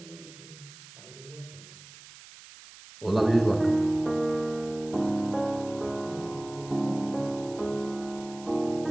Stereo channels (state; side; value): noise; right; hiss, 18 dB below the sound